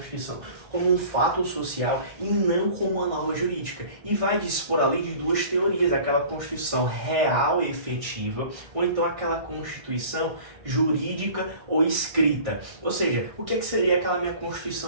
como um fato social e não como uma norma jurídica. E vai dispor ali de duas teorias, aquela Constituição real e efetiva, ou então aquela Constituição jurídica ou escrita. Ou seja, o que seria aquela minha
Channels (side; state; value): left; late; 1.6 ms